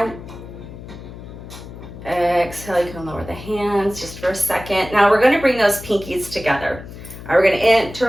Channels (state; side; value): noise; left; hum, 14 dB below the sound